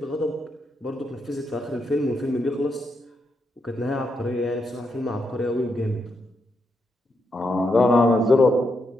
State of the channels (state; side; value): normal; both; correlation 0.81